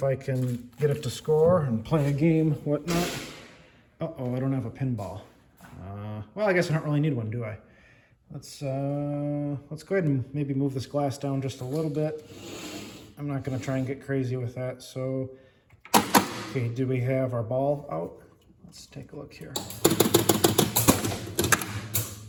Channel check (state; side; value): identical; both; correlation 1.00